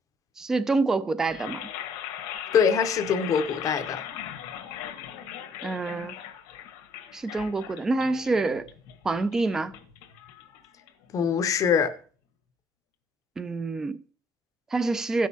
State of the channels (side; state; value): both; normal; correlation 0.64